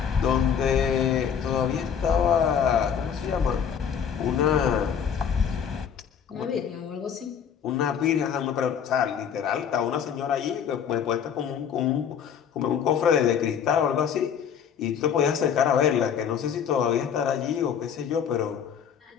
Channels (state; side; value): quieter; right; 7.8 dB